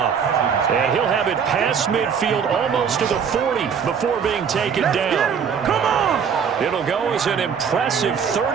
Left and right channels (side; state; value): left; quieter; 6.9 dB